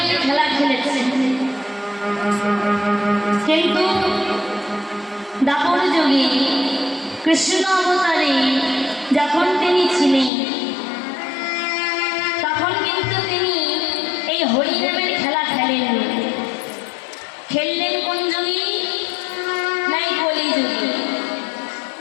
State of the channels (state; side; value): drops out; right; at 10.3 s